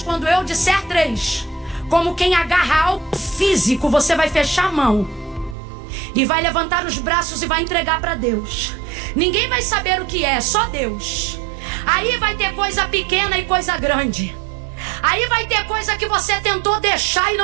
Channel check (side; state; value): left; drops out; at 5.6 s